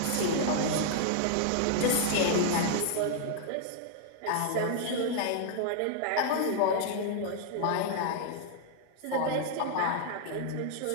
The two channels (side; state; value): both; different; correlation -0.01